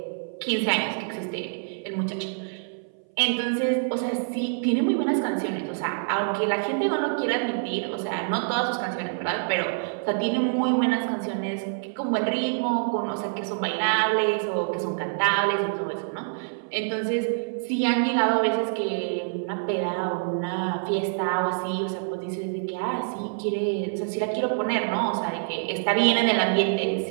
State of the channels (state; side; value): silent; left; 58 dB below the other